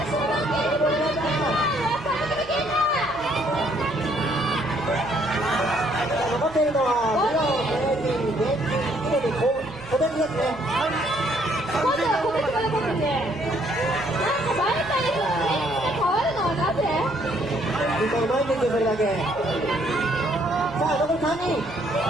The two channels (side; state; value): right; noise; hum, 22 dB below the sound